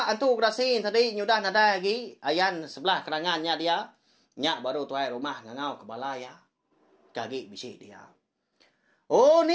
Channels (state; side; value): identical; both; correlation 1.00